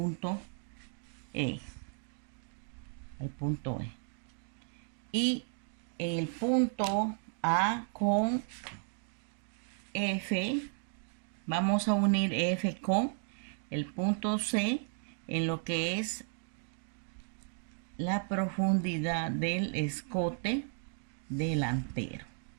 E, y el punto A con F, vamos a unir F con el punto C en lo que es la profundidad del escote delantero.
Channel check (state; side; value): silent; left; 55 dB below the other